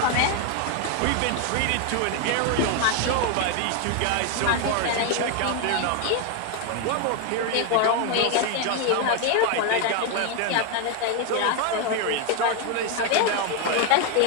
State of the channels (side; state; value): both; different; correlation 0.01